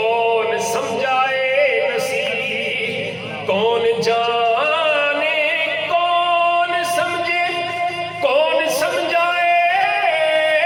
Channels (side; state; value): both; identical; correlation 1.00